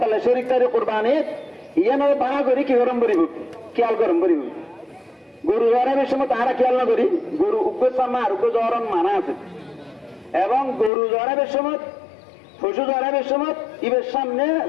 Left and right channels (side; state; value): right; drops out; at 10.9 s